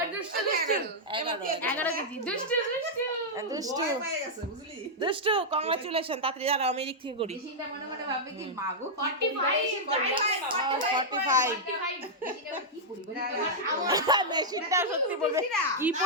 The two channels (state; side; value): normal; both; correlation -0.06